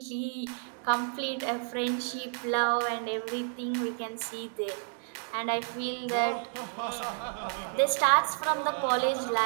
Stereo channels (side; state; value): left; silent; 57 dB below the other